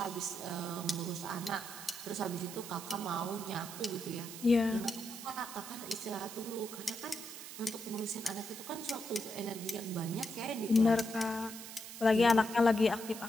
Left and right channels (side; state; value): right; noise; hiss, 11 dB below the sound